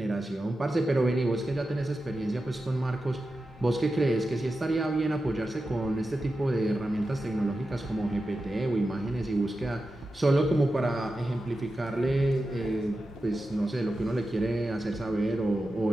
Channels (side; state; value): both; normal; correlation 0.91